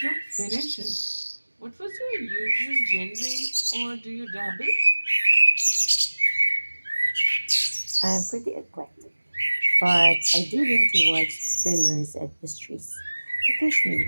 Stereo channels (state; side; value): inverted; both; correlation -1.00